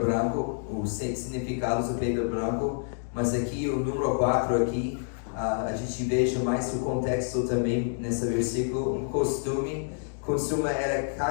os significados da pedra branco, mas aqui o número 4 aqui, a gente veja mais o contexto também nesse versículo. Um costume era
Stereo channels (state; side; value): silent; right; digital silence